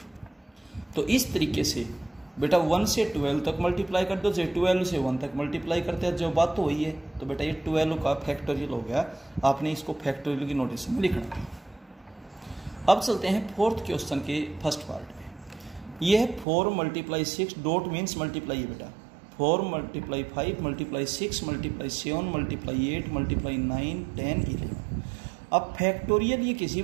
तो इस तरीके से बेटा 1 से 12 तक मल्टीप्लाई कर दो, चाहे 12 से 1 तक मल्टीप्लाई करते हैं, जो बात तो वही है। तो बेटा ये 12 का फैक्टोरियल हो गया। आपने इसको फैक्टोरियल की नोटेशन में लिखना है। अब चलते हैं 4th क्वेश्चन के 1st पार्ट में। यह है 4 × 6 डॉट मीन्स मल्टीप्लाई है बेटा। 4 × 5 × 6 × 7 × 8 × 9 10 11। अब फैक्टोरियल ये किसी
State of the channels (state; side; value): drops out; left; at 16.4 s